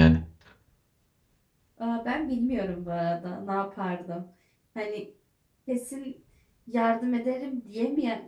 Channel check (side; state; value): both; identical; correlation 1.00